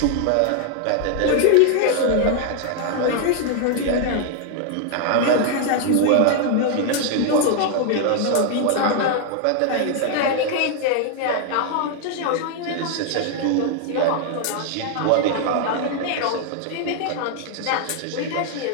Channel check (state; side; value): different; both; correlation 0.00